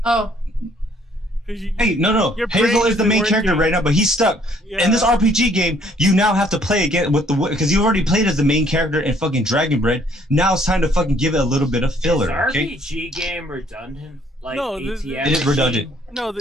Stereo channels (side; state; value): both; normal; correlation 0.63